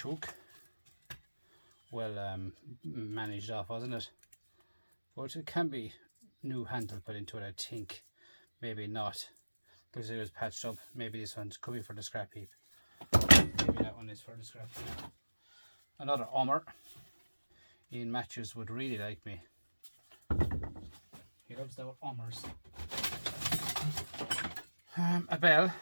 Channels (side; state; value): both; inverted; correlation -1.00